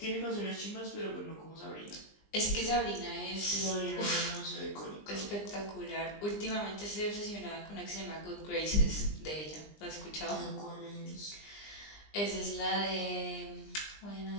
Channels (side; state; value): right; late; 20 ms